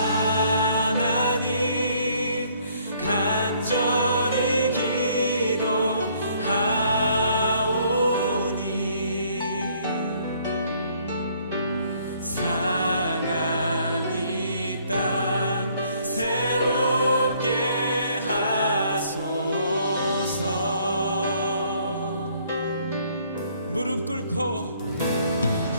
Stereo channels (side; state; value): both; inverted; correlation -0.63